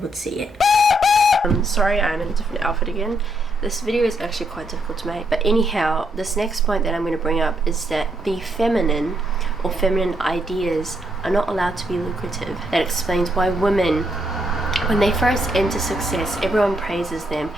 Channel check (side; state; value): both; normal; correlation 0.76